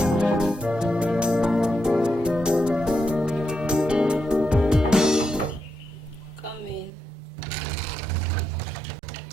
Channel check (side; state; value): left; drops out; at 6.9 s